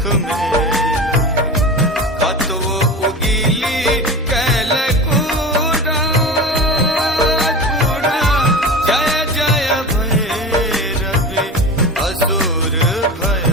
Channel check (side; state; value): both; normal; correlation 0.30